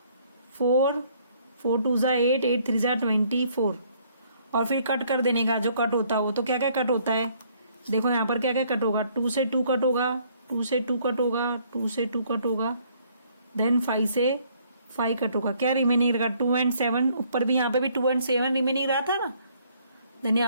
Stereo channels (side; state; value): both; inverted; correlation -0.64